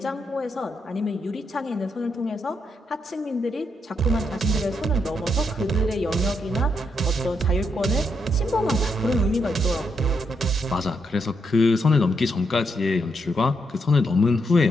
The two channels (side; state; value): both; normal; correlation 0.79